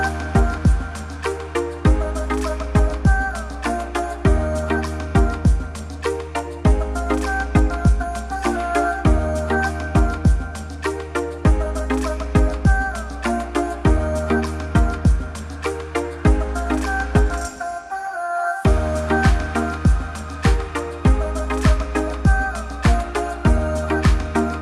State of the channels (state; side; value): identical; both; correlation 1.00